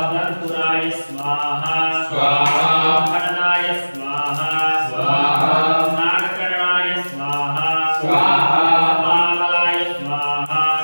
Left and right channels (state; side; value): inverted; both; correlation -1.00